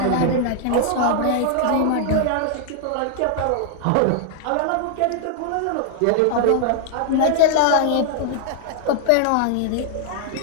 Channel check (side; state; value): both; different; correlation 0.00